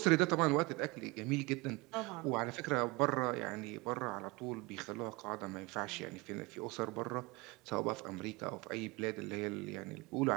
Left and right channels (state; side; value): quieter; left; 24.6 dB